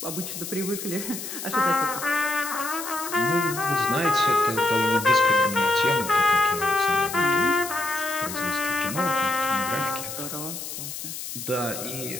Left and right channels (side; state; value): left; noise; hiss, 8 dB below the sound